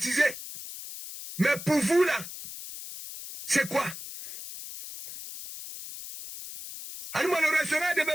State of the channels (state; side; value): noise; left; hiss, 11 dB below the sound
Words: Mais pour vous, là, c'est quoi? Alors, le restaurant est